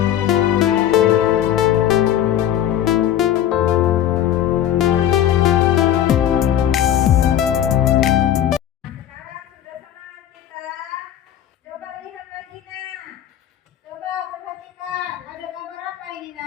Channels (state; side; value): quieter; right; 11.1 dB